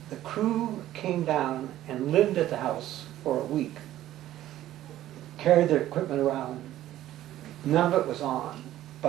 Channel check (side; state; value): left; quieter; 13.5 dB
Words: crew came down and lived at the house for a week, carried their equipment around. None of it was on,